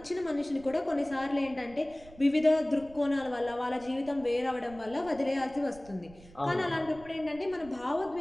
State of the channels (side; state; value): right; noise; rumble, 21 dB below the sound